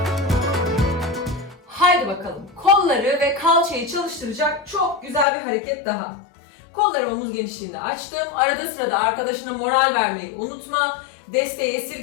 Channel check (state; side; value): drops out; right; at 5.2 s